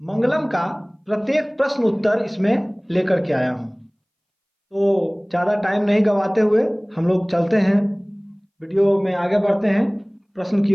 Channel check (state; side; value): identical; both; correlation 1.00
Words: का प्रत्येक प्रश्न उत्तर इसमें लेकर के आया हूँ। तो ज़्यादा टाइम नहीं गवाते हुए हम लोग चलते हैं, वीडियो में आगे बढ़ते हैं प्रश्न की